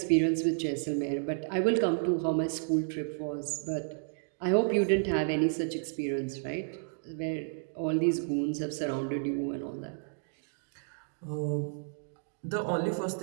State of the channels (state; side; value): silent; left; digital silence